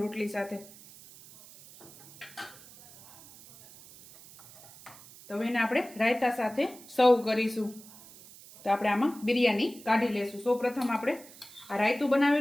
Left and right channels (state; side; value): noise; right; hiss, 20 dB below the sound